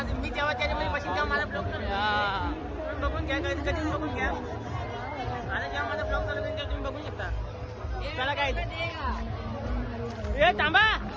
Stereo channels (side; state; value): both; identical; correlation 1.00